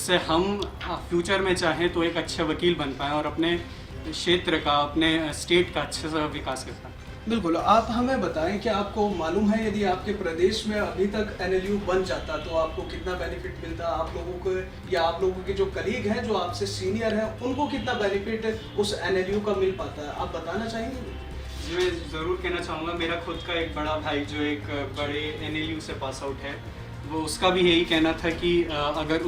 हम फ्यूचर में चाहें तो एक अच्छा वकील बन पाएँ और अपने क्षेत्र का, अपने स्टेट का अच्छे से विकास कर पाएँ। बिल्कुल, आप हमें बताएं कि आपको मालूम है यदि आपके प्रदेश में अभी तक एनएलयू बन जाता तो आपको कितना बेनिफिट मिलता, आप लोगों को या आप लोगों के जो कलीग हैं जो आपसे सीनियर हैं उनको कितना बेनिफिट उस एनएलयू का मिल पाता है, आप बताना चाहेंगे? जी, मैं ज़रूर कहना चाहूँगा। मेरा खुद का एक बड़ा भाई जो एक बड़े एनएलयू से पास आउट है, वो उसका भी यही कहना था कि अगर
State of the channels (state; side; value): identical; both; correlation 1.00